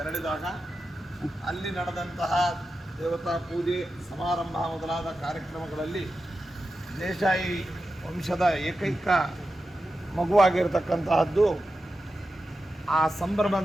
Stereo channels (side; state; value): both; normal; correlation 0.91